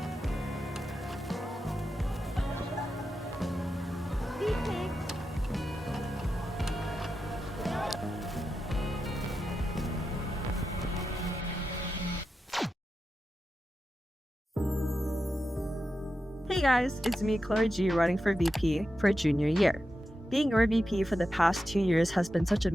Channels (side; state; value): both; normal; correlation 0.89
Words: Hey guys, it's me, Chloe G, running for VP for junior year. Being your VP for the past 2 years has been such a